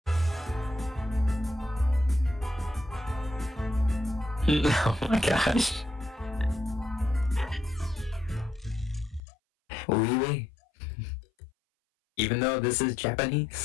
Oh my gosh. Oui, oui. Even though this is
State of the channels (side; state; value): right; drops out; at 9.2 s